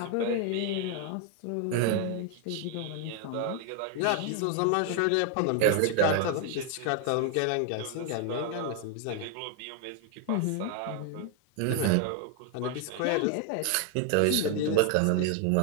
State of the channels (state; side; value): different; both; correlation 0.00